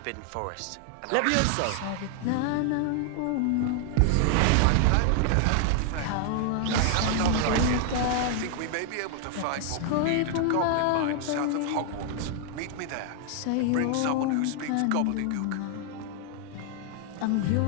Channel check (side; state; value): both; different; correlation 0.00